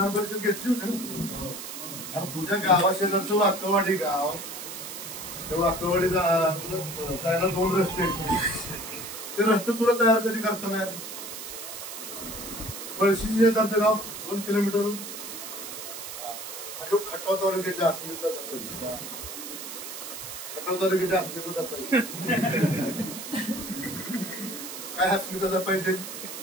परिषद घेतली होती ना. आता तुझ्या गावाशेजारचं वाकवाडी गाव, त्या वाकवाडी जायला 2 रस्ते आहेत. ते रस्ते तुला तयार कधी करता नाही. पळशी शेजारचं गाव 2 किलोमीटर आणि खटाव तालुक्याच्या अस्मिता जपायची. खटाव तालुक्याच्या अस्मिता जपायची. काय अस्मिता जपायची?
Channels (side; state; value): right; noise; hiss, 9 dB below the sound